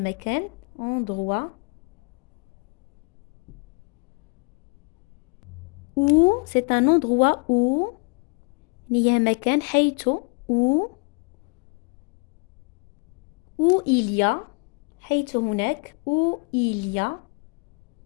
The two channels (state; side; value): quieter; right; 33.9 dB